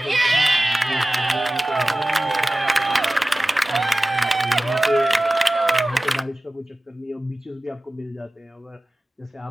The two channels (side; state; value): both; normal; correlation 0.96